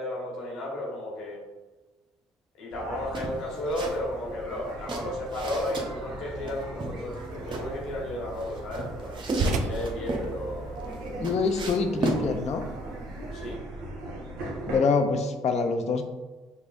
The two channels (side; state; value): both; normal; correlation 0.60